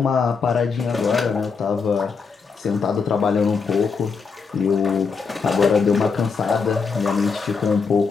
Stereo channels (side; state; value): right; quieter; 5.2 dB